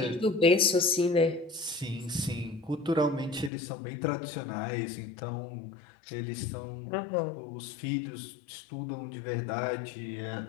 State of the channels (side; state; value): right; drops out; at 3.5 s